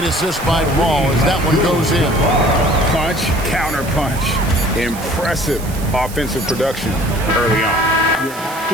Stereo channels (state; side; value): noise; right; hiss, 15 dB below the sound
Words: assist by Paul as that one goes in. Punch, counter punch. Impressive offensive production early on. You have